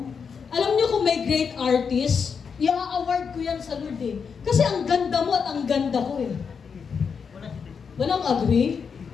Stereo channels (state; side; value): quieter; right; 6.1 dB